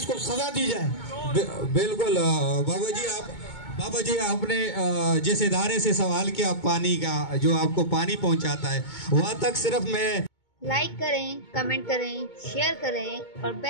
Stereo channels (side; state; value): right; late; 2.2 ms